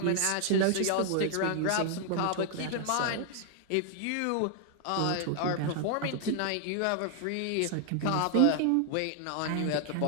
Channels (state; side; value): different; both; correlation 0.00